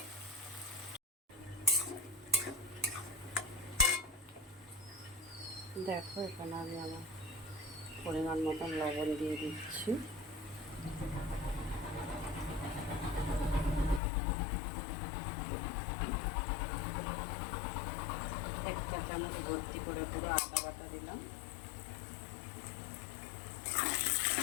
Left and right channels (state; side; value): drops out; right; at 14.0 s